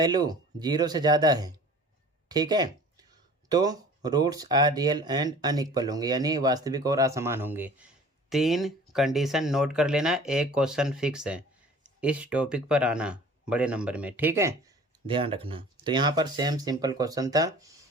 0 से ज़्यादा है, ठीक है, तो roots are real and unequal होंगे, यानी वास्तविक और असमान होंगे। 3 कंडीशन नोट कर लेना, एक क्वेश्चन फिक्स है, इस टॉपिक पर आना बड़े नंबर में, ठीक है, ध्यान रखना। तो यहाँ पर सेम सिंपल क्वेश्चन था,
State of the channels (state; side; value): normal; both; correlation 0.46